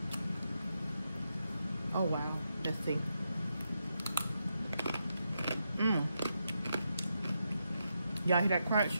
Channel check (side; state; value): both; inverted; correlation -0.84